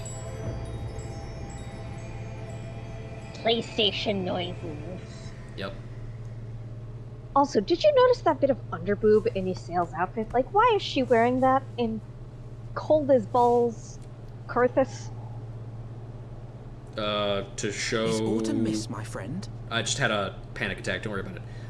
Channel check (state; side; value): identical; both; correlation 1.00